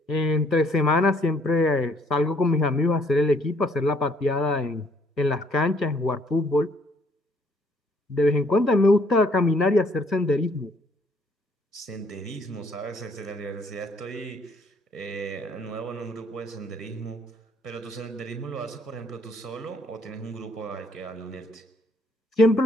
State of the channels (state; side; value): normal; both; correlation 0.65